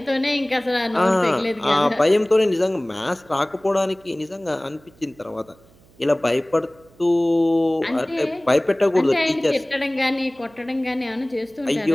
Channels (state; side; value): noise; right; hum, 29 dB below the sound